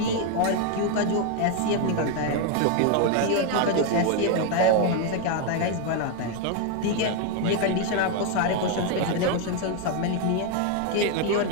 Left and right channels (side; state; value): both; different; correlation 0.01